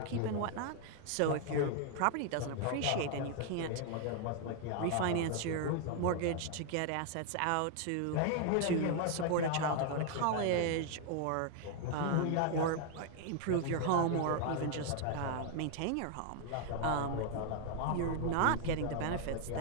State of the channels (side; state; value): both; different; correlation 0.00